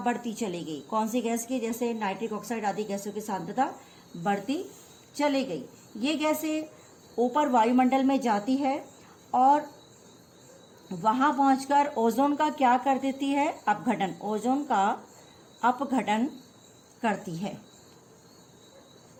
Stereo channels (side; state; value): both; identical; correlation 1.00